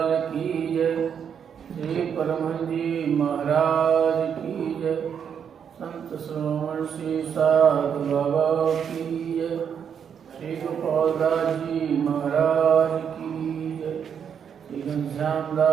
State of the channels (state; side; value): quieter; left; 7.7 dB